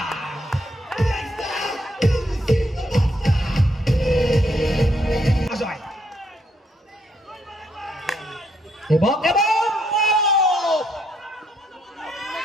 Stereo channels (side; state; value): both; normal; correlation 0.73